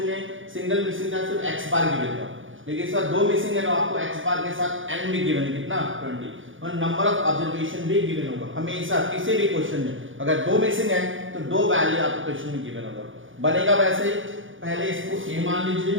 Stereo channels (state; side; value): late; left; 0.57 ms